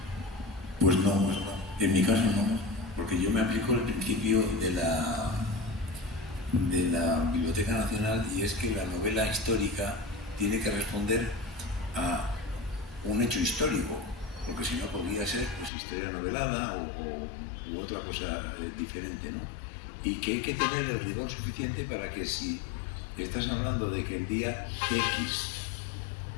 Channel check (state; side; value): drops out; right; at 15.7 s